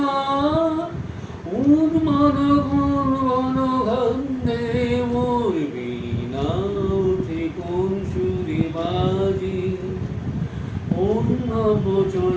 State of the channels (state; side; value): identical; both; correlation 1.00